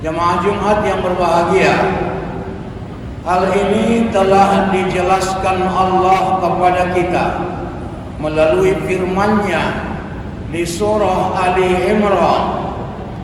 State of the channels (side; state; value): both; identical; correlation 1.00